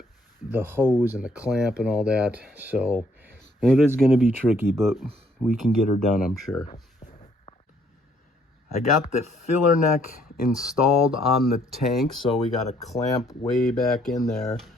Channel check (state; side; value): normal; both; correlation 0.66